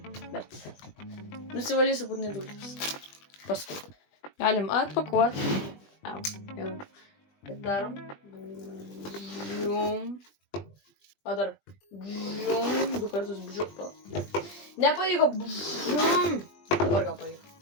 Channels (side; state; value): right; late; 20 ms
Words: bet nusivalysiu būtinai dulkės. Paskui. Galim atpakuoti. Jau. Ir darom. Bžium. O dar. Bžium. 2 kartus bžium. Nepavyko. Bžium. Dabar gal pavyko.